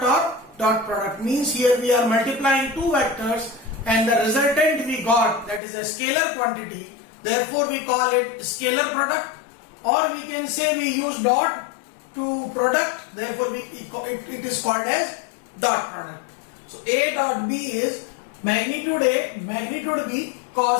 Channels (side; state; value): right; drops out; at 5.6 s